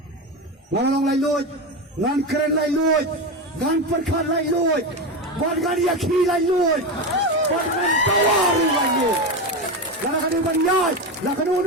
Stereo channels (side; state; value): both; normal; correlation 0.18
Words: ngan long lai loi ngan keren lai loi ngan per khat lai loi ban gan ya khi lai loi ban gan tawaru lai loi lana kan ban yai la kan